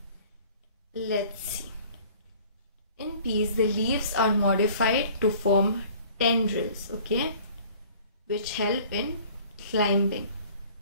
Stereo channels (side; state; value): both; inverted; correlation -0.50